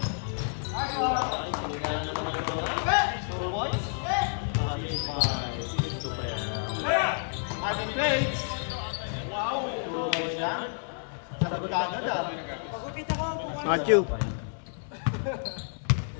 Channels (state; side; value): silent; right; digital silence